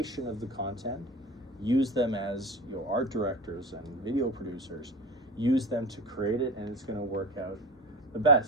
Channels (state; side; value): normal; both; correlation 0.30